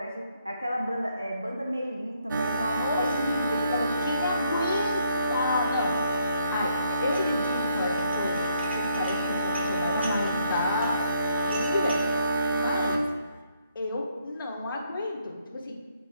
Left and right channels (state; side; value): inverted; both; correlation -0.72